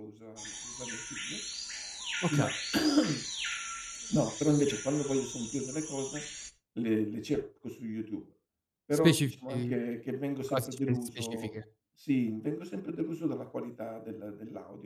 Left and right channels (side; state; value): both; identical; correlation 1.00